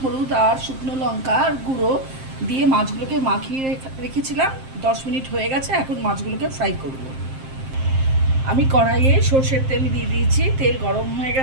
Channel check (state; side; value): late; left; 7.6 ms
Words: হলুদ আর শুকনো লঙ্কার গুঁড়ো দিয়ে মাছগুলোকে মাখিয়ে রেখেছিলাম। 10 মিনিট হয়ে গেছে, এখন মাছগুলোকে ফ্রাই করব। আমি কড়াইয়ে সর্ষের তেল দিয়ে দিয়েছি, তেল গরম হয়ে